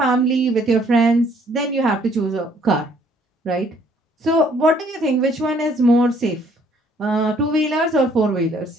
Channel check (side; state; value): both; normal; correlation 0.63